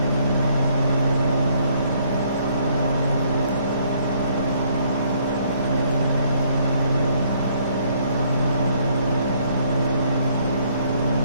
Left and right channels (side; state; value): both; inverted; correlation -0.66